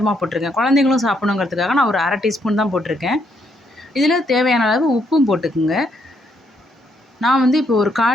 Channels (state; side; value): normal; both; correlation 0.74